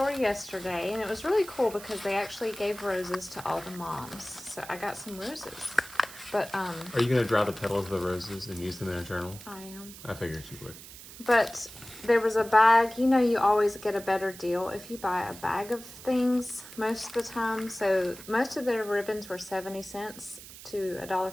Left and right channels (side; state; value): right; noise; hiss, 16 dB below the sound